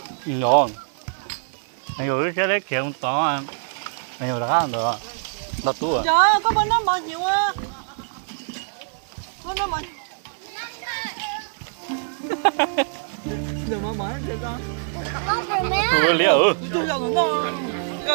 ngon anh rồi cái đấy kiểu to anh rồi đã ăn được đặt tủ à trời ơi có bên đó bao nhiêu á bên đó bao đừng mà mở cho con ủa liệu tôi giờ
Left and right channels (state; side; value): silent; left; 62 dB below the other